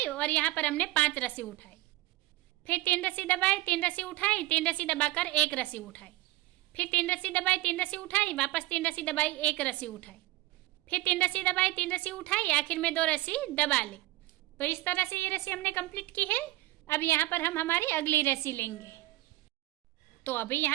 और यहाँ पर हमने 5 रस्सी उठाई, फिर 3 रस्सी दबाई, 3 रस्सी उठाई, 3 रस्सी दबाकर 1 रस्सी उठाई, फिर 3 रस्सी दबाई, 3 रस्सी उठाई, वापस 3 रस्सी दबाई, 1 रस्सी उठाई, फिर 3 रस्सी दबाई, 3 रस्सी उठाई, आखिर में 2 रस्सी दबा ली। तो इस तरह से ये रस्सी हमने कंप्लीट की है। अब यहाँ पर हम हमारी अगली रस्सी लेंगे। तो अभी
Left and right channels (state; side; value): quieter; left; 18.4 dB